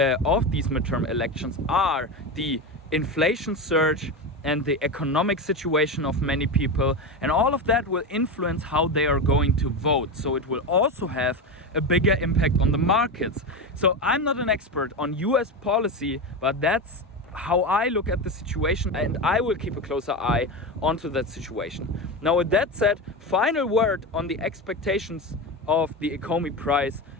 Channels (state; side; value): normal; both; correlation 0.19